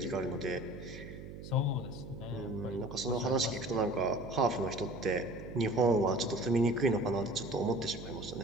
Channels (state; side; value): noise; right; hum, 12 dB below the sound